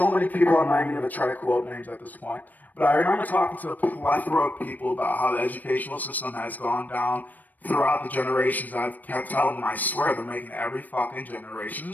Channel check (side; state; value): right; late; 0.083 ms